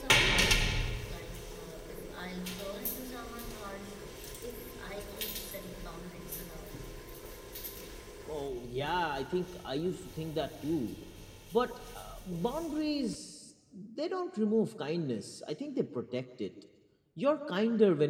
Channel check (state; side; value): identical; both; correlation 1.00